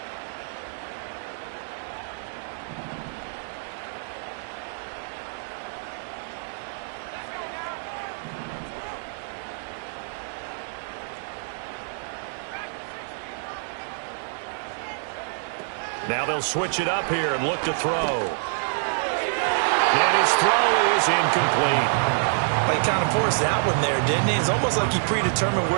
Now they'll switch it up here and look to throw. And his throw is incomplete. Well, he kind of forced that one there, didn't he? It's almost like he predetermined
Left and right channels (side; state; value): left; silent; digital silence